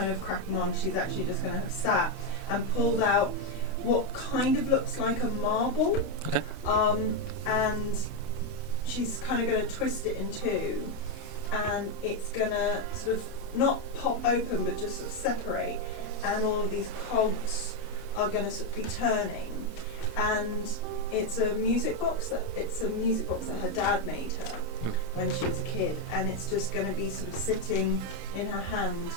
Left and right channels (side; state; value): right; late; 32 ms